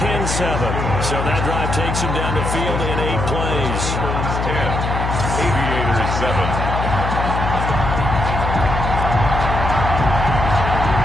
So that drive takes him down the field in 8 plays. 10. Aviators 7.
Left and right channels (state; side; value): noise; left; hum, 2 dB below the sound